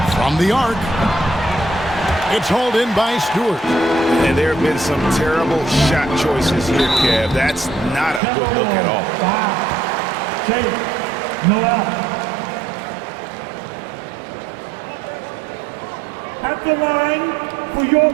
from the arc. It's hauled in by Stewart. And there have been some terrible shot choices here, Kev. That's not a good look at all. Shaquille O Neal. At the line for your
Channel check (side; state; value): left; drops out; at 8.2 s